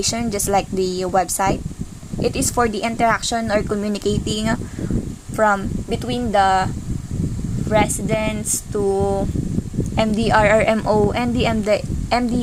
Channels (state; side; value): identical; both; correlation 1.00